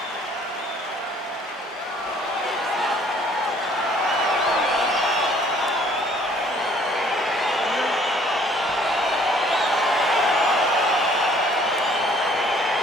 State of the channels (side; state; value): both; normal; correlation 0.58